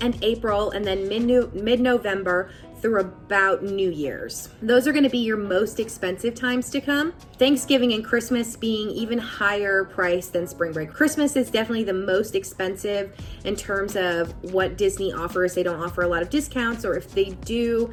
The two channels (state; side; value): identical; both; correlation 1.00